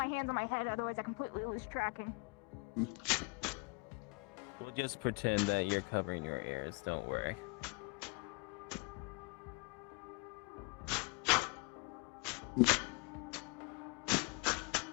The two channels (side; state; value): right; quieter; 29.8 dB